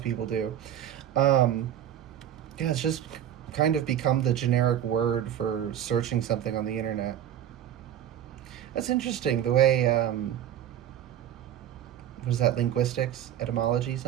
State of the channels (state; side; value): quieter; left; 10.7 dB